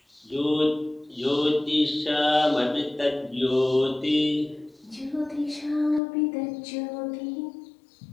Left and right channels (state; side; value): drops out; right; at 6.0 s